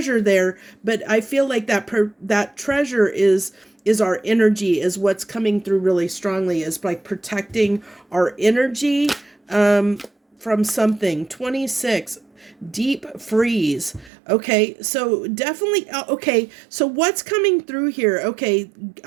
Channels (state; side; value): drops out; left; at 14.1 s